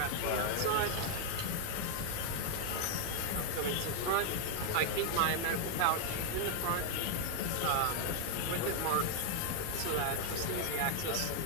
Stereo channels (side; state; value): both; different; correlation 0.00